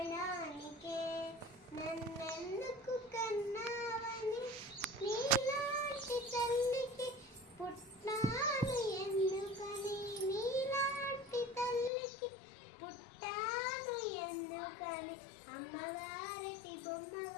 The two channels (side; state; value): right; drops out; at 11.9 s